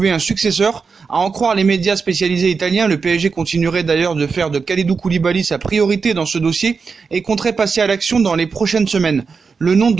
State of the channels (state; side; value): quieter; left; 5.1 dB